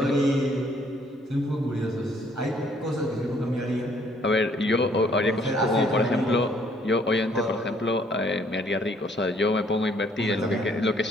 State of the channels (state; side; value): normal; both; correlation 0.64